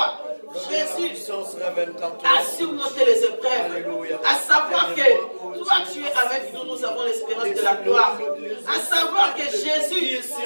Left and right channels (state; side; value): inverted; both; correlation -1.00